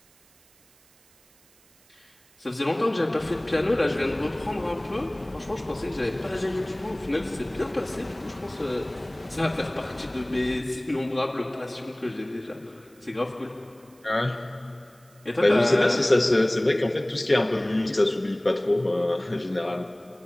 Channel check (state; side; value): noise; right; hiss, 30 dB below the sound